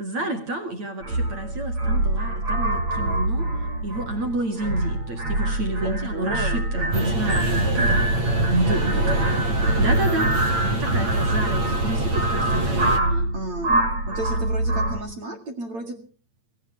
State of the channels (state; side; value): late; left; 8.8 ms